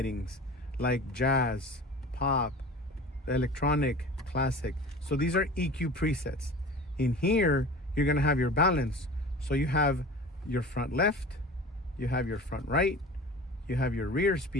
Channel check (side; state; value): both; normal; correlation 0.38